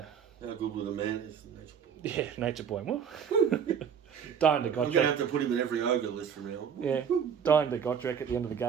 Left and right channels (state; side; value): quieter; left; 7.5 dB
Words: How good will the man is? Yeah, Nature Boy. Well, dying to I'm going to Gotrek. have to put him in every ogre list from now on. Yeah, dying to Gotrek at the end of the